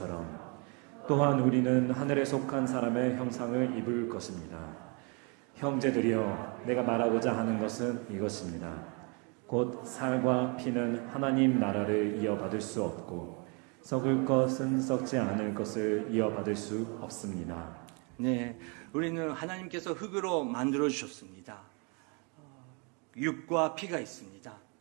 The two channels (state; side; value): quieter; left; 33.7 dB